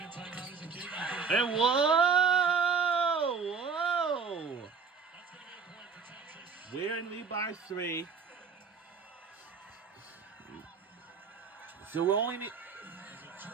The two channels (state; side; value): quieter; left; 5.6 dB